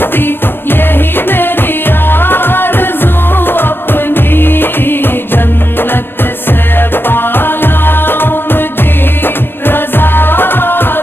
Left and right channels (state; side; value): late; right; 0.10 ms